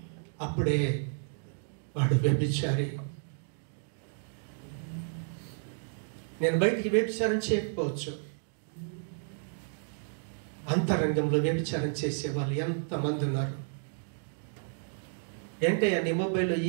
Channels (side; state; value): left; silent; digital silence